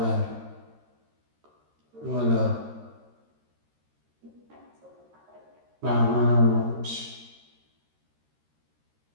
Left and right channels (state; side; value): late; left; 13 ms